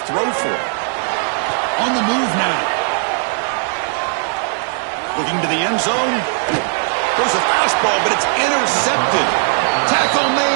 throw for it. On the move now. Looking to the end zone. There's a fastball, but it's intercepted. Tackle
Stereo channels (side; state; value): left; silent; 56 dB below the other